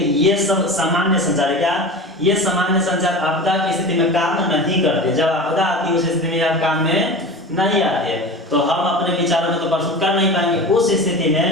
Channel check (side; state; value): both; normal; correlation 0.32